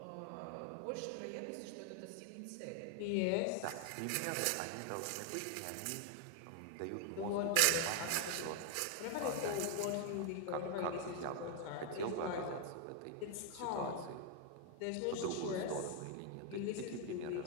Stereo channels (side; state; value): both; different; correlation 0.01